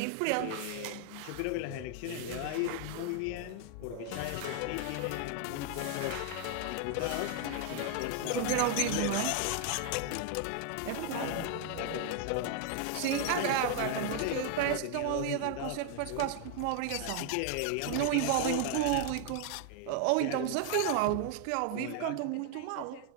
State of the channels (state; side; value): different; both; correlation 0.00